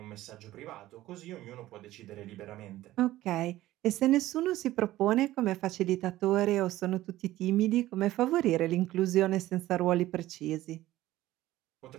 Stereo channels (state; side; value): quieter; left; 15.6 dB